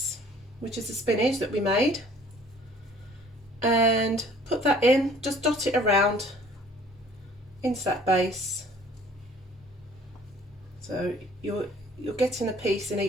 which is the spinach that we made, and put that in, just dot it around into that base. So you're getting a piece in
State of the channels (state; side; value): normal; both; correlation 0.54